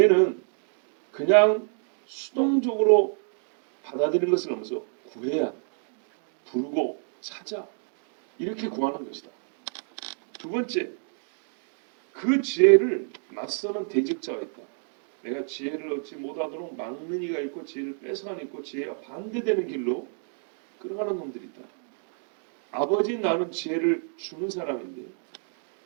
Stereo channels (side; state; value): left; silent; 59 dB below the other